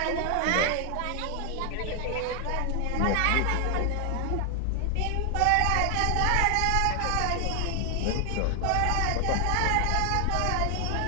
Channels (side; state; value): both; different; correlation 0.00